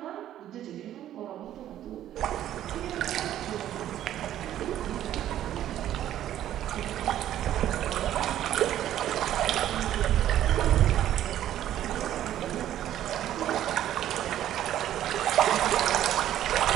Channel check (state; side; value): quieter; left; 11.9 dB